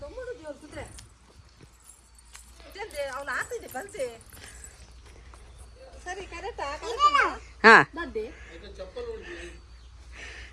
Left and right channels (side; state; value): both; identical; correlation 1.00